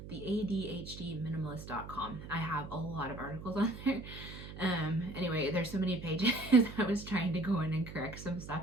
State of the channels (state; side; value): noise; right; hum, 12 dB below the sound